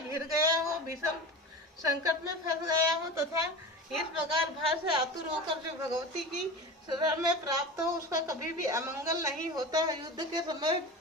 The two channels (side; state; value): both; normal; correlation 0.30